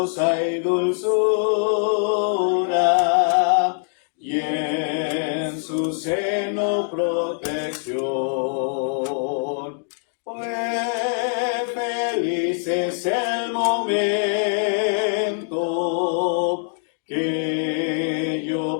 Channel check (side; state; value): right; silent; digital silence